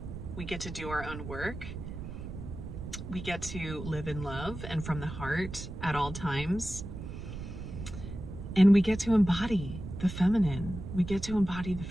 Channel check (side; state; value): right; noise; rumble, 9 dB below the sound